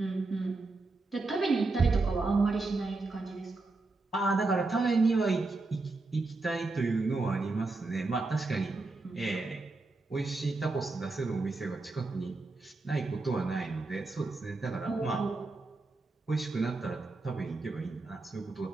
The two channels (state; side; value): quieter; left; 3.5 dB